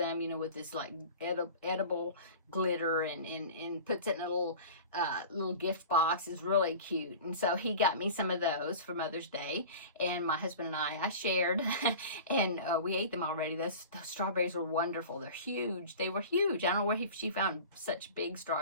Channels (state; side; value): inverted; both; correlation -0.37